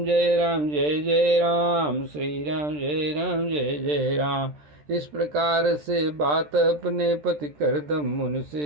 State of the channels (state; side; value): late; left; 13 ms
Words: जय राम जय जय राम, श्री राम जय राम जय जय राम। इस प्रकार से बात अपने पति करदम मुनि